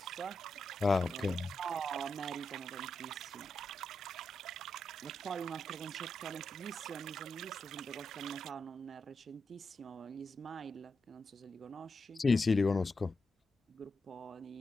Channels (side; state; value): both; normal; correlation 0.86